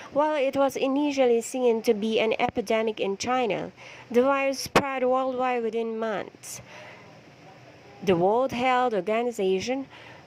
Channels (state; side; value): identical; both; correlation 1.00